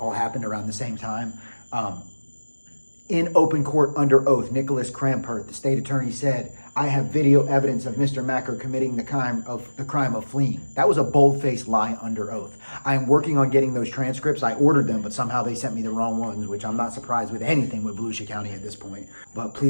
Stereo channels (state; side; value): inverted; both; correlation -1.00